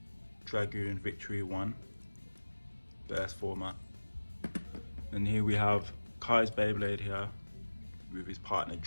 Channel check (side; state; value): both; inverted; correlation -1.00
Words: Dragoon Victory 1 burst format, and here we have Kai's Beyblade here with his partner